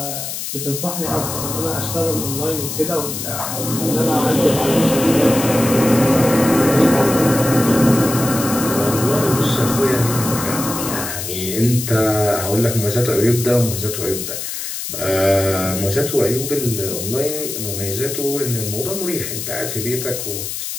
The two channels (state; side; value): noise; left; hiss, 6 dB below the sound